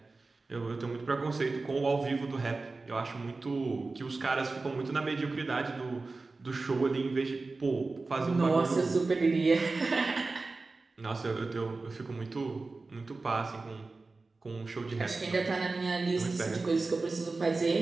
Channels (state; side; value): quieter; left; 3.7 dB